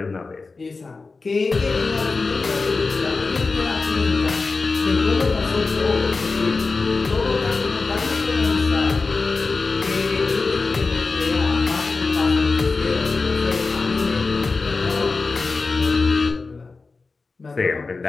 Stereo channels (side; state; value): right; quieter; 4.0 dB